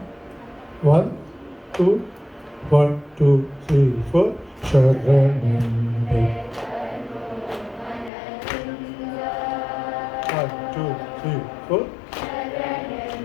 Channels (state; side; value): drops out; right; at 8.1 s